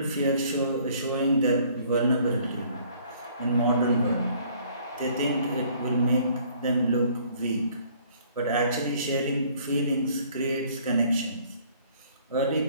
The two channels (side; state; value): both; inverted; correlation -0.58